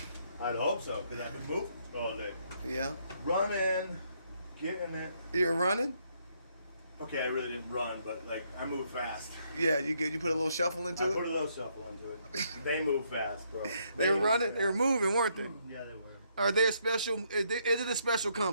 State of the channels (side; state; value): both; inverted; correlation -0.73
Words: I'd hope so, because I've been moving all day. Yeah. Running, getting it. You're running? Okay, I really didn't run, but like I move fast. Yeah, you put a little shuffle into I it? put a little shuffle into it. They move fast, bro. They were running? They were moving, weren't they? Yeah, they were. Are they a special, is it a special